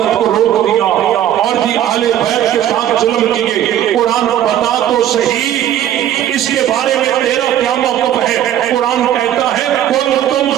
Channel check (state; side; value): quieter; left; 11.4 dB